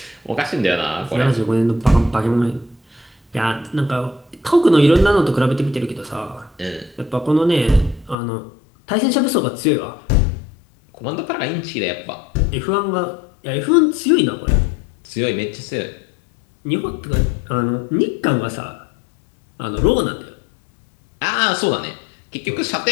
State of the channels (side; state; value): right; drops out; at 8.2 s